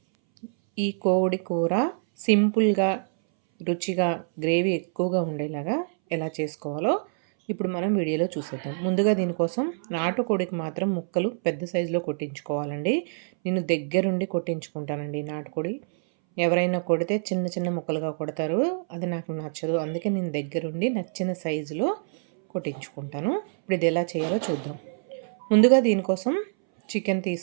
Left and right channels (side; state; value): left; silent; 61 dB below the other